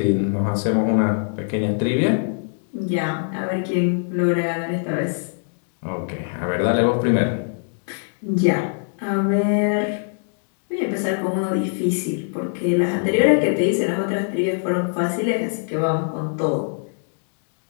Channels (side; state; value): right; silent; digital silence